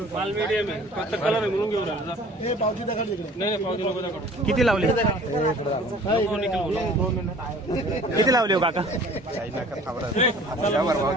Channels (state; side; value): normal; both; correlation 0.49